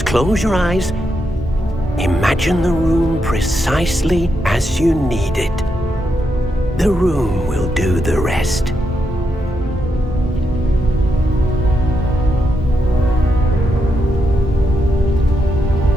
close your eyes. Imagine the room precisely as you need it. The room will do the rest.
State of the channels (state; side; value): normal; both; correlation 0.82